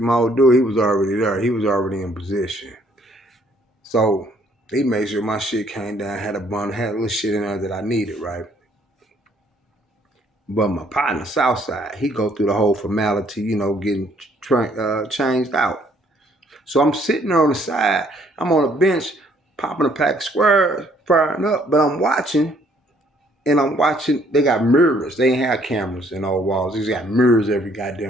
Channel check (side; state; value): both; normal; correlation 0.64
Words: old dude, he was already there. He was already in position. So he made sure my shit came down, had a bundle, had a little shit in there that I needed, right? But my partner, Southside, he go through the whole formality, getting changed out. So I'm sitting there on the side. I'm on a bench, popping a pack of squares, firing up, but I'm watching, and I'm watching. They got mirrors. They ain't have cameras in all walls. They just got mirrors every